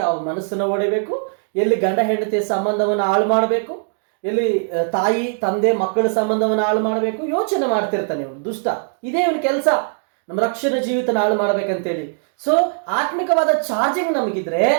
ಯಾವ ಮನಸ್ಸನ್ನು ಓಡಬೇಕು, ಎಲ್ಲಿ ಗಂಡ ಹೆಂಡತಿಯ ಸಂಬಂಧವನ್ನು ಹಾಳು ಮಾಡಬೇಕು, ಎಲ್ಲಿ ತಾಯಿ ತಂದೆ ಮಕ್ಕಳ ಸಂಬಂಧವನ್ನು ಹಾಳು ಮಾಡಬೇಕು, ಯೋಚನೆ ಮಾಡ್ತಿರ್ತಾನೆ ಇವನು ದುಷ್ಟ. ಇದೇ ಇವನ ಕೆಲಸ, ನಮ್ಮ ರಕ್ಷಣೆ ಜೀವಿತನ ಹಾಳು ಮಾಡ್ಬೇಕಂತೇಳಿ. ಸೊ ಆತ್ಮಿಕವಾದ ಚಾರ್ಜಿಂಗ್ ನಮಗಿದ್ರೆ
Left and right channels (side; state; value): left; silent; digital silence